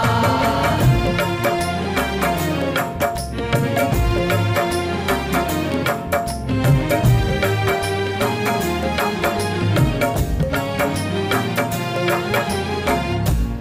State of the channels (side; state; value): both; identical; correlation 1.00